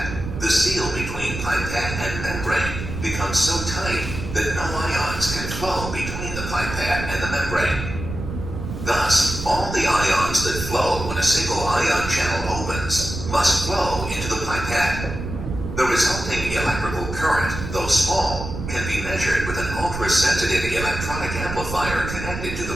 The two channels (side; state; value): right; noise; rumble, 7 dB below the sound